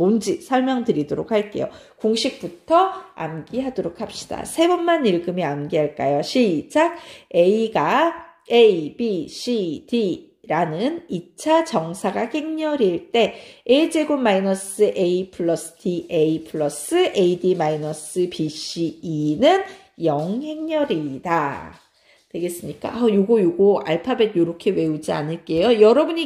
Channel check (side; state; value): both; identical; correlation 1.00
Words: 설명드리도록 할게요. 공식부터 암기하도록 합시다. 세 번만 읽으면 암기할까요? 시작! A가 A, B, C, D 라는 2차 정사각 행렬일 때 a제곱 마이너스 a 플러스 da 플러스 ad 마이너스 bc 2는 0행렬이다. 되겠습니까? 요거 알파벳 요렇게 외우지 않을게요.